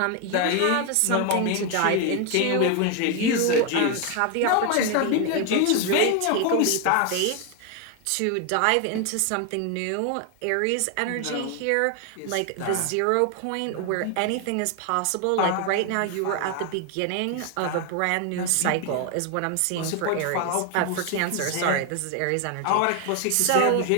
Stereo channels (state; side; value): different; both; correlation 0.01